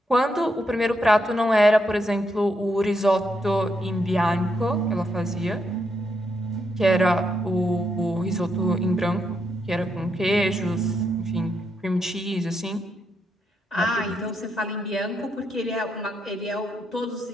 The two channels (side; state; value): both; normal; correlation 0.80